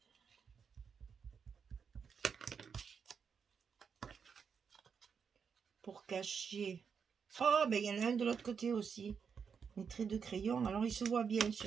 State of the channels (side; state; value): left; quieter; 6.4 dB